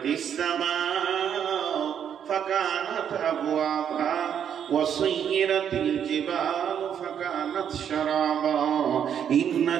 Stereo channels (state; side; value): quieter; left; 8.6 dB